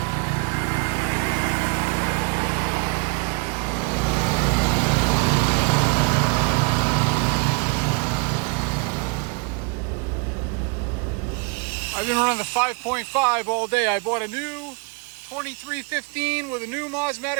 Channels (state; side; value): quieter; left; 34.3 dB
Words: I've been running the 5.5 all day. I bought a new 2315 with a new